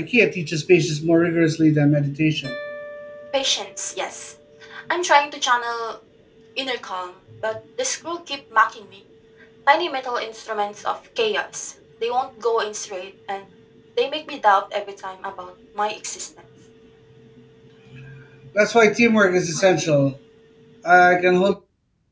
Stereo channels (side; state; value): both; identical; correlation 1.00